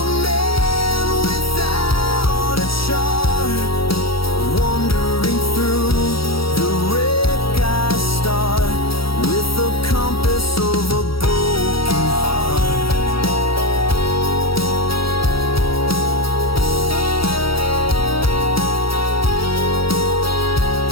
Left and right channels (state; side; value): late; right; 0.75 ms